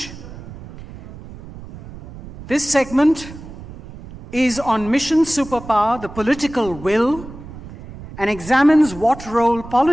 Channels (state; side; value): noise; right; rumble, 15 dB below the sound